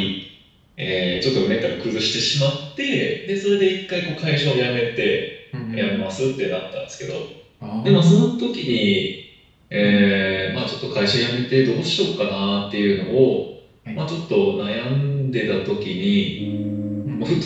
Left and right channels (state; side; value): identical; both; correlation 1.00